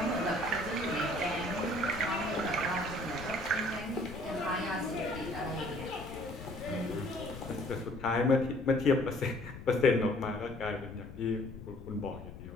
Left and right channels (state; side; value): noise; left; rumble, 13 dB below the sound